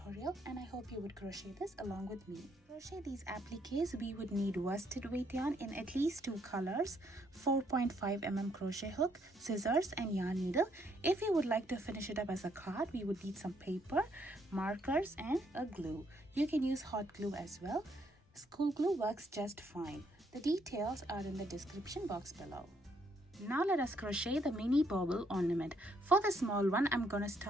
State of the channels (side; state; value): both; normal; correlation 0.71